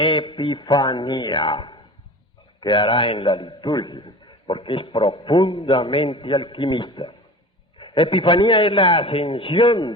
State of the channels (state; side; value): normal; both; correlation 0.37